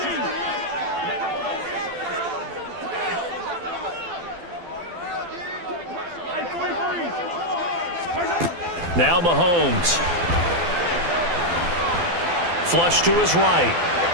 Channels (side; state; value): left; late; 12 ms